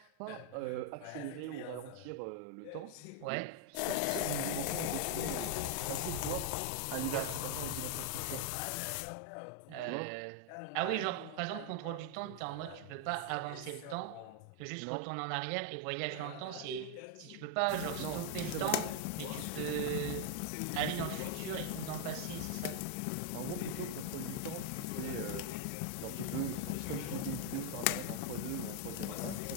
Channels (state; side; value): different; both; correlation 0.00